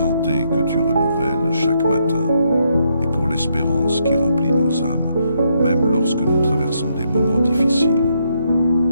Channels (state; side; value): inverted; both; correlation -0.76